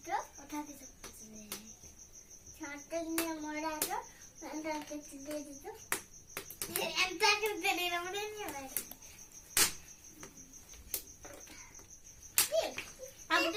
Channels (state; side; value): identical; both; correlation 1.00